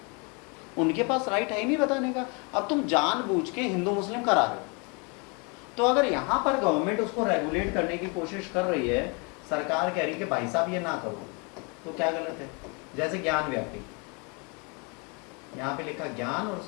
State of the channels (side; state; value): right; quieter; 32.5 dB